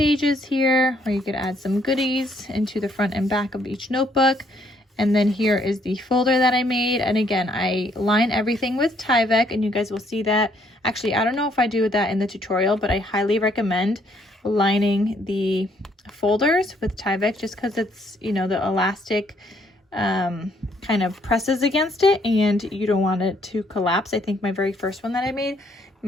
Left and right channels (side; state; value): both; normal; correlation 0.68